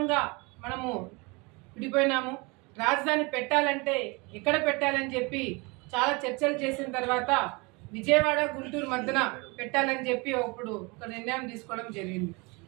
మనము విడిపోయినాము. రాజధాని పెట్టాలంటే ఎక్కడ పెట్టాలని చెప్పి చాలా చర్చలు చేసిన తర్వాత విజయవాడ గుంటూరు మధ్యన పెట్టాలని చెప్పి అప్పుడు ఒక నిర్ణయం తీసుకోవడం జరిగింది.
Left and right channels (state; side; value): quieter; left; 27.6 dB